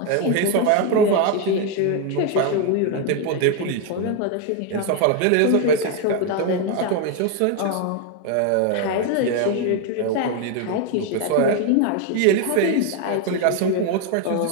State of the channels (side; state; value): both; different; correlation 0.01